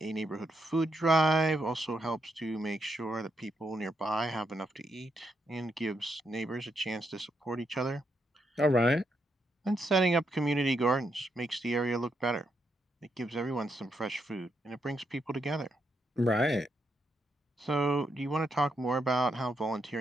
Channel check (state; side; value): normal; both; correlation 0.80